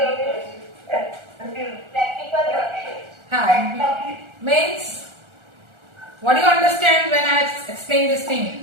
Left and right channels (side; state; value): left; late; 1.4 ms